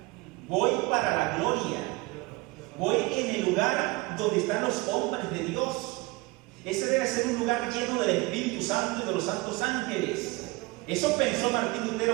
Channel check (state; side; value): quieter; left; 23.4 dB